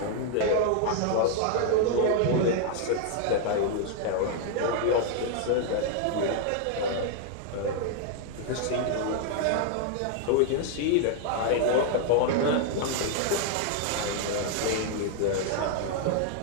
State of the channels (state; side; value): different; both; correlation 0.00